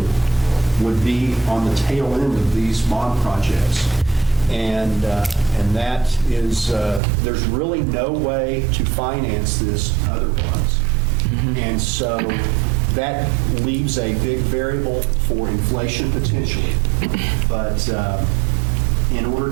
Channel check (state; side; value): drops out; left; at 7.0 s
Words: would be on the tail end of these bond projects. And that is, there's really no way to finance this otherwise. And so that leaves a big variable for inflation potentially. But in order